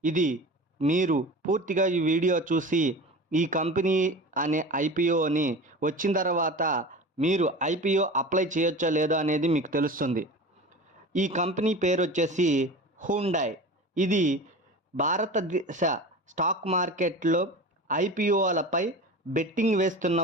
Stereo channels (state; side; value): normal; both; correlation 0.33